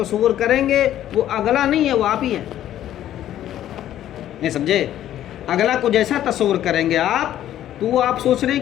کریں گے وہ اگلا نہیں ہے، وہ آپ ہی ہے، نہیں سمجھے؟ اگلا کو جیسا تصور کریں گے آپ تو وہ آپ سوچ رہے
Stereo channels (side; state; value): right; quieter; 12.0 dB